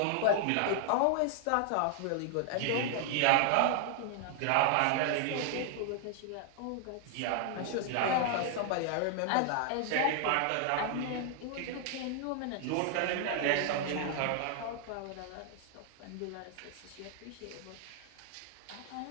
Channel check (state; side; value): different; both; correlation 0.00